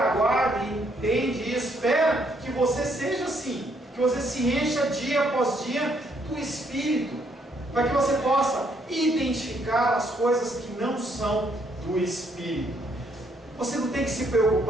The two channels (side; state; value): both; normal; correlation 0.71